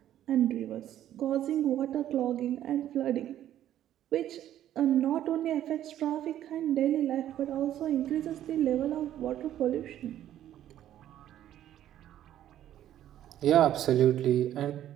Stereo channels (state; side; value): quieter; left; 11.8 dB